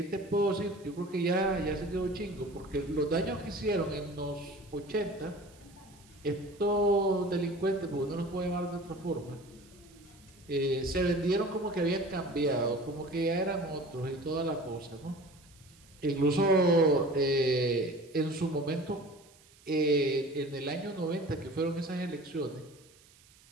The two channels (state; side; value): noise; right; hiss, 27 dB below the sound